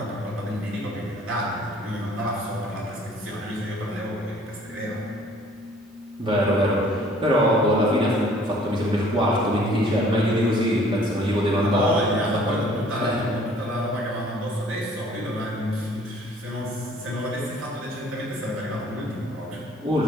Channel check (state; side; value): normal; both; correlation 0.55